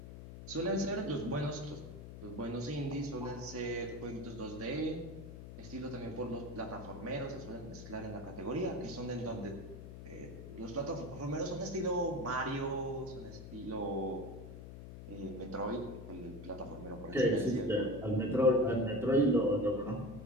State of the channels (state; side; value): noise; left; hum, 11 dB below the sound